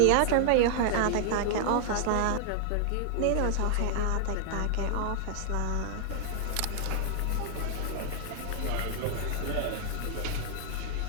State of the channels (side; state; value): both; different; correlation -0.01